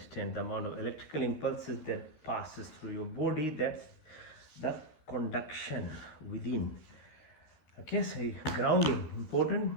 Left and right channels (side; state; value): right; late; 13 ms